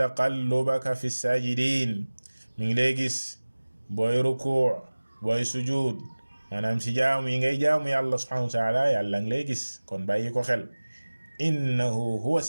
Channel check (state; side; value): inverted; both; correlation -1.00